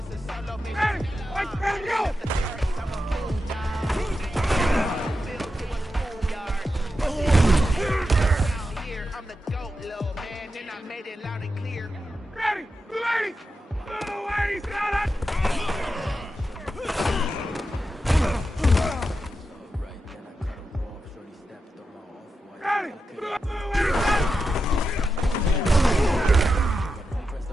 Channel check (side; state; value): both; normal; correlation 0.89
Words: ready, go! I'm the GOAT, little man, and I made it loud and clear. Ready, 280, 280, sit down, that! Ready, 280, set!